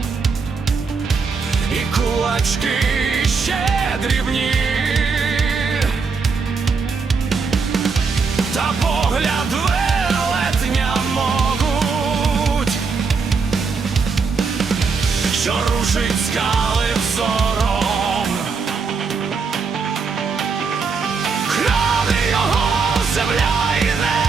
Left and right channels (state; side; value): quieter; left; 4.9 dB